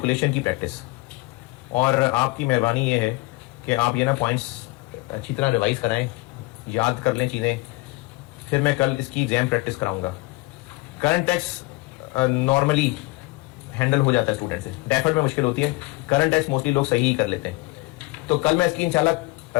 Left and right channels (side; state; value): right; quieter; 22.7 dB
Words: की प्रैक्टिस, और आपकी मेहरबानी ये है कि आप ये ना पॉइंट्स अच्छी तरह रिवाइज कराएं, याद कर लें चीज़ें, फिर मैं कल इसकी एग्जाम प्रैक्टिस कराऊंगा। करंट टैक्स नॉर्मली हैंडल हो जाता है स्टूडेंट से, डेफर्ड में मुश्किल होती है, करंट टैक्स मोस्टली लोग सही ही कर लेते हैं। तो कल मैं इसकी इंशाल्लाह,